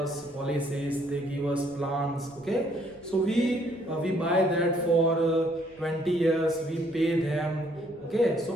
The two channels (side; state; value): right; noise; rumble, 30 dB below the sound